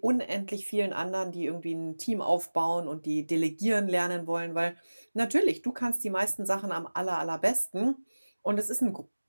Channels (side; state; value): both; inverted; correlation -1.00